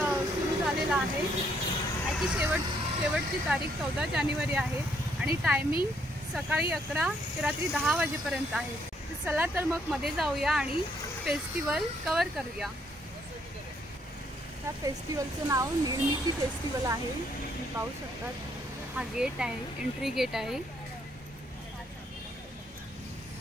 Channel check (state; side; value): normal; both; correlation 0.70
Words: सुरू झालेला आहे। याची शेवटची तारीख 14 जानेवारी आहे आणि टायमिंग सकाळी 11 ते रात्री 10 वाजेपर्यंत आहे। तर चला तर मग मध्ये जाऊया आणि फेस्टिवल कव्हर करूया। या फेस्टिवलचं नाव निर्मिती फेस्टिवल आहे। तुम्ही पाहू शकतात, हा गेट आहे, एंट्री गेट आहे।